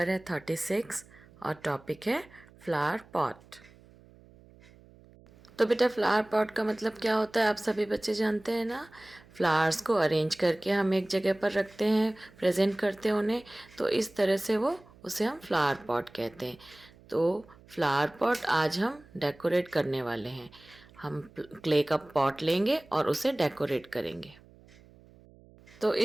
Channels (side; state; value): right; noise; hum, 25 dB below the sound